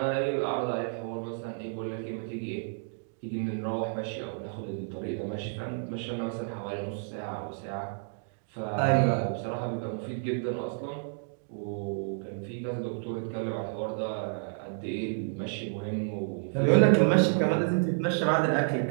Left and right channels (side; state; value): left; silent; digital silence